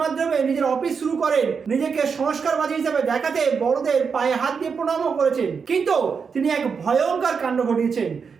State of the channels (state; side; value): quieter; left; 5.8 dB